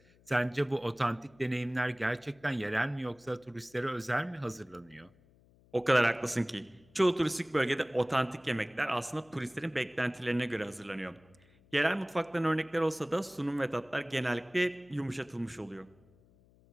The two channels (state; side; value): noise; left; hum, 29 dB below the sound